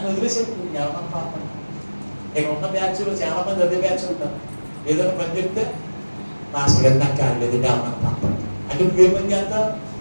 వదిలేసాడు. ఎవరన్నా పాపడు. ఇక్కడ ఉన్న బ్యాచ్లో చాలా మంది అదే బ్యాచ్ ఉంటారు. ఏదైనా పని చెప్తే మాస్టర్ గారు నాకు కాలేదు ఎవరన్నా పాపడు అంటే నువ్వేం పని చేస్తావు?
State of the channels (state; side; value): inverted; both; correlation -1.00